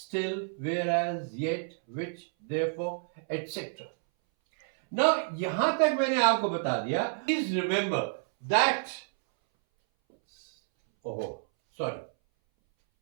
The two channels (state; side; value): silent; left; 58 dB below the other